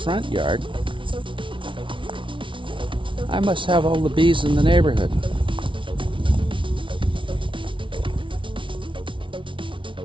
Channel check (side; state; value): left; late; 0.25 ms